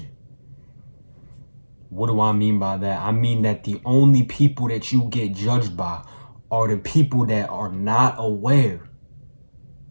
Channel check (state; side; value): inverted; both; correlation -1.00